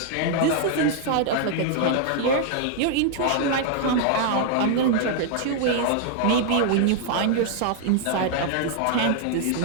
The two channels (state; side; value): different; both; correlation -0.01